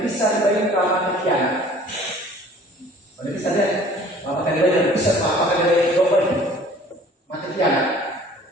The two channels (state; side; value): normal; both; correlation 0.51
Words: bisa dibayar ramah kian, banyak bisa deh, apakah dibayar bisa, apakah dibayar global, mati kian,